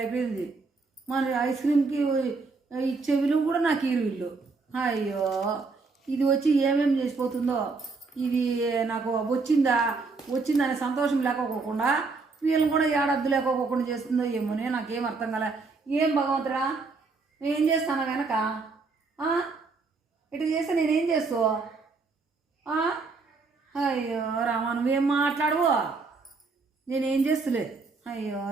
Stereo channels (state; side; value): quieter; left; 4.2 dB